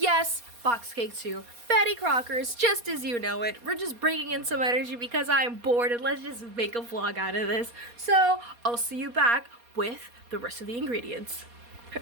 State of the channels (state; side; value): late; left; 4.2 ms